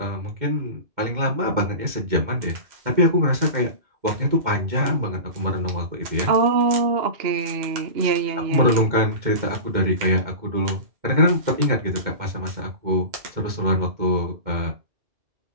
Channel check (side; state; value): left; late; 2.1 ms